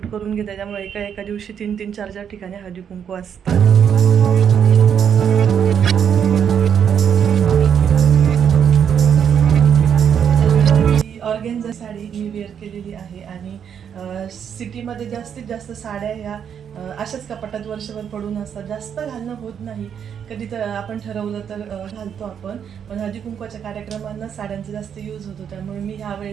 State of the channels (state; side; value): quieter; left; 8.1 dB